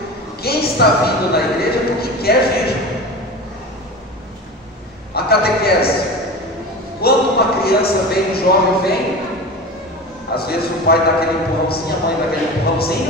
Quem está vindo na igreja é porque quer vir. A catequese. Quando uma criança vem, um jovem vem, às vezes o pai dá aquele empurrãozinho, a mãe dá aquele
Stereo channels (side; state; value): both; normal; correlation 0.31